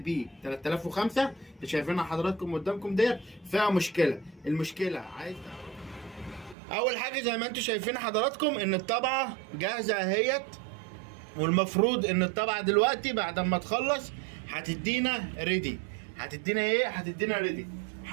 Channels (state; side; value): drops out; left; at 6.6 s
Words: 3005 اللي شايفينها حضراتكم قدامكم ديت فيها مشكلة. المشكلة أول حاجة زي ما أنتم شايفين حضراتكم إن الطبعة جاهزة أهيت، والمفروض إن الطبعة دلوقتي بعد ما تخلص هتدينا ريدي. هتدينا إيه؟ هتدينا ريدي.